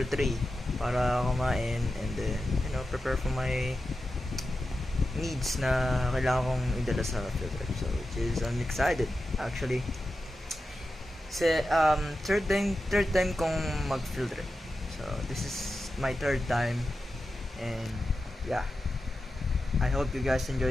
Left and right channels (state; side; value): normal; both; correlation 0.91